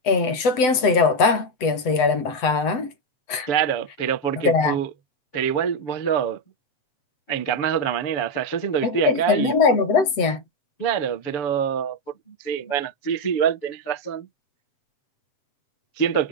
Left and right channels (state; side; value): late; right; 7.9 ms